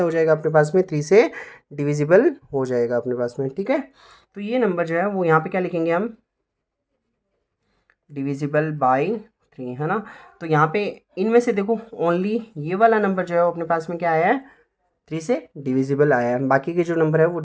हो जाएगा अपने पास में, 3 से डिविजिबल हो जाएगा अपने पास में, ठीक है। तो ये नंबर जो है वो यहाँ पे क्या लिखेंगे हम, डिविजिबल बाई 3, है ना। तो यहाँ पे इनमें से देखो ओनली ये वाला नंबर जो है वो अपने पास में क्या आया है, 3 से डिविजिबल आया है, बाकी के जो नंबर है वो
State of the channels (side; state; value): both; identical; correlation 1.00